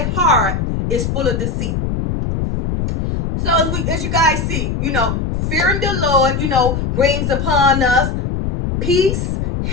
heart is full of deceit. So as you guys see, fearing the Lord, brings upon us peace,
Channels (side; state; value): left; noise; rumble, 2 dB below the sound